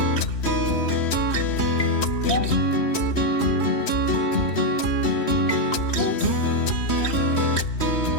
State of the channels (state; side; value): late; right; 3.1 ms